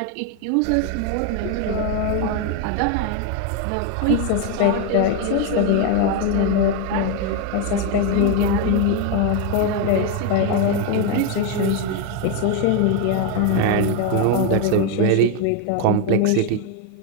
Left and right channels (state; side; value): different; both; correlation 0.01